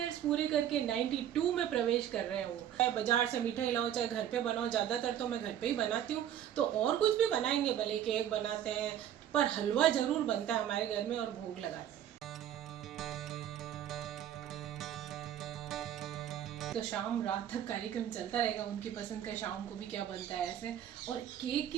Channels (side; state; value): left; quieter; 10.5 dB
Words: पूरे करके 92 में प्रवेश कर रहे हैं वो। चाहे बाजार से मिठाई लाओ चाहे घर पे बनाओ, ज़्यादातर तो मैं घर पे ही बनाती हूँ। तो और कुछ भी बनाएंगे, भले केक बनाते हैं, पर हलवा ज़रूर बनता है हमारे घर में और भोग लगाते हैं। तो शाम रात तक कार्यक्रम चलता रहेगा, उनकी पसंद का शाम को भी क्या बनता है ऐसे। और केक